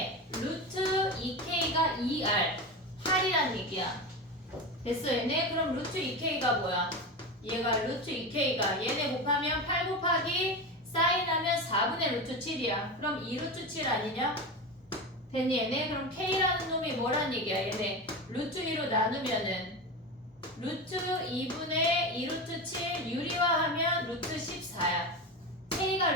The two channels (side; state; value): both; normal; correlation 0.22